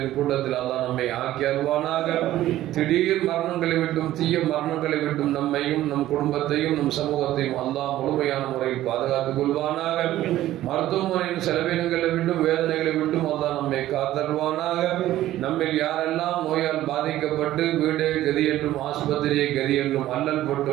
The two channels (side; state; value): left; quieter; 14.2 dB